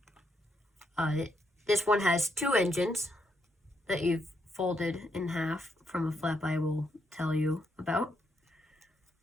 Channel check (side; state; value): both; normal; correlation 0.78